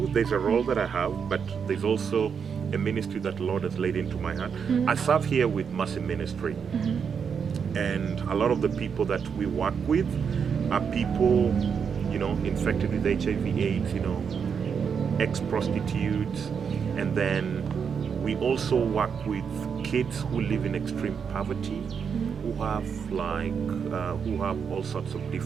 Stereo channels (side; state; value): left; quieter; 6.7 dB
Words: there's a role that I have, but there's also a ministry that the Lord has laid into my heart. I serve here with Mercy Ministry. And a lot of the people that we work with are people, infected with HIV/AIDS, ex-prostitutes, and then we also work with kids who live in extreme poverty, who have all sorts of